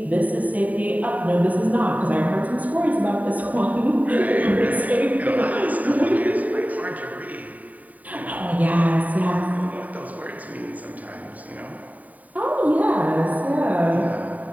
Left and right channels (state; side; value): late; left; 0.073 ms